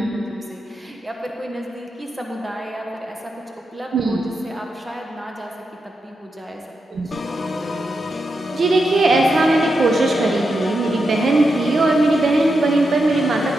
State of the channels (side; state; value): both; normal; correlation 0.86